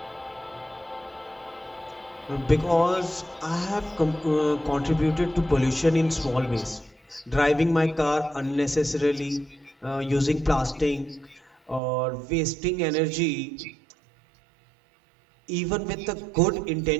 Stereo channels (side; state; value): left; drops out; at 11.8 s